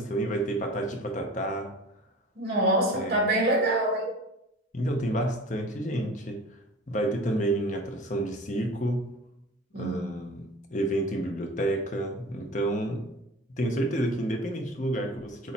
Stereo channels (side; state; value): both; normal; correlation 0.39